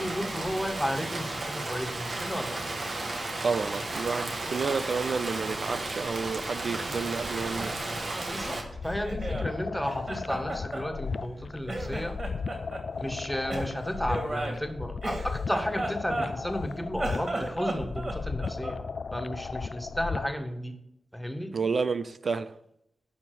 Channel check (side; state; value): both; normal; correlation 0.91